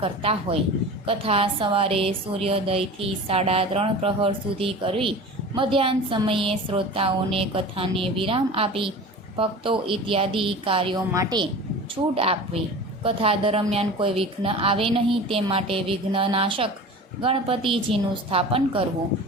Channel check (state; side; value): normal; both; correlation 0.36